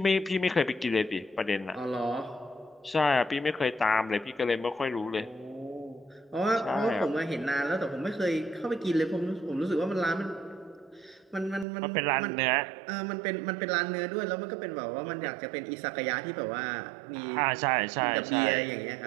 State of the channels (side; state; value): left; drops out; at 11.7 s